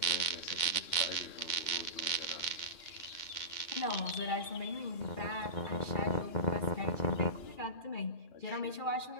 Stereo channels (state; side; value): late; right; 2.2 ms